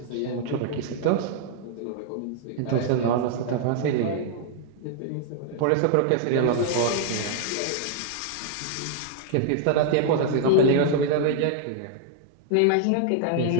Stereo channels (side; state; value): both; different; correlation -0.01